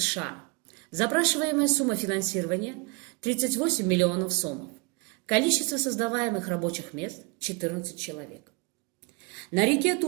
Запрашиваемая сумма финансирования – 38 миллионов сомов. Количество создаваемых рабочих мест – 14 человек. На реке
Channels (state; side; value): quieter; left; 29.1 dB